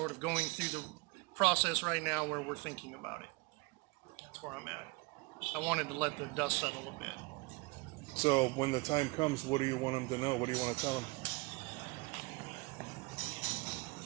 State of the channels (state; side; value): quieter; left; 26.4 dB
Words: of going through process right now where we're thinking about it. That's where I'm at. I wanted to let the dust settle a bit. So when the time comes, what do you want them to know? What do you want to tell them?